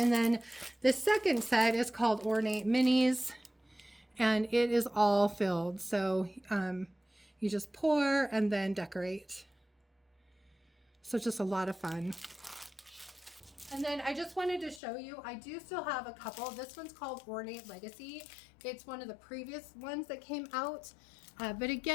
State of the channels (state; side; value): drops out; right; at 14.8 s